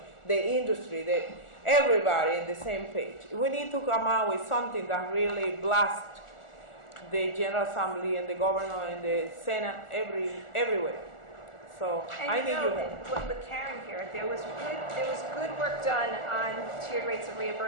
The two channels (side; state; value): right; late; 1.4 ms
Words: the industry, everybody in the same page. We need to come out with something that really blasts the General Assembly and the Governor and the Senate everywhere. So And I need your help. with Karen here, there was good work done on tiered rates of